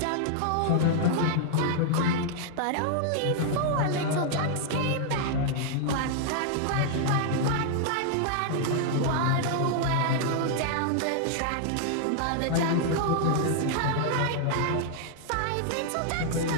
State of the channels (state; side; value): different; both; correlation -0.01